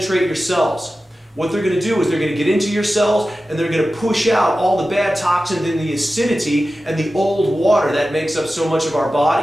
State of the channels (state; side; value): normal; both; correlation 0.94